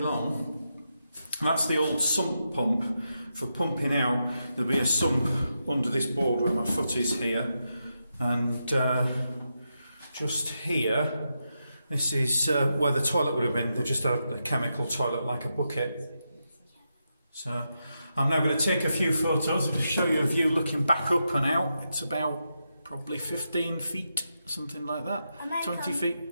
That's the old sump pump for pumping out. There'll be a sump under this board where my foot is here. And just here, this is where the toilet would have been. They just had a chemical toilet like a bucket. So I'm now going to take a few photos and show you a view looking back up and out. It's about probably 15 feet, something like that. 20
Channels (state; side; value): inverted; both; correlation -0.86